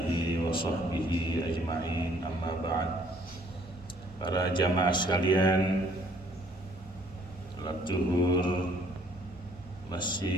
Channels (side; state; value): both; normal; correlation 0.61